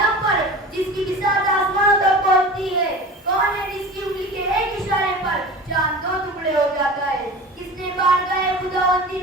پر جس کی بساط آسمانوں تک پہنچتی ہے؟ کون ہے جس کی انگلی کے ایک اشارے پر چاند دو ٹکڑے ہو جاتا ہے؟ کس نے بارگاہ خداوندی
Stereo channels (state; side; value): normal; both; correlation 0.35